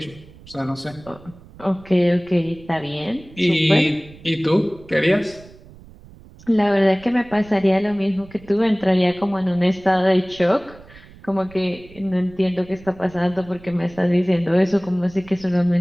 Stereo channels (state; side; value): noise; right; rumble, 22 dB below the sound